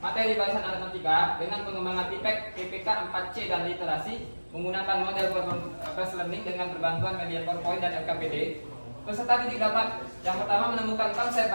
materi barisan aritmatika dengan pengembangan TIPEK, PPK, 4C, dan literasi menggunakan model Fast Learning dengan berbantuan media PowerPoint dan LKPD. Peserta didik dapat yang pertama menemukan konsep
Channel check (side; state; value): both; inverted; correlation -1.00